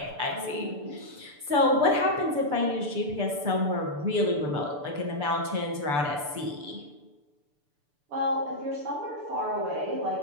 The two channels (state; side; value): late; left; 6.8 ms